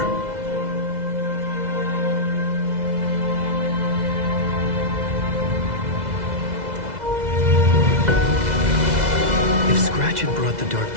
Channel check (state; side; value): late; left; 2.0 ms